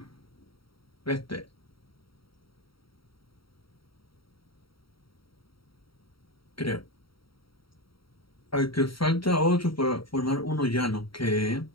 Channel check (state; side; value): late; right; 0.75 ms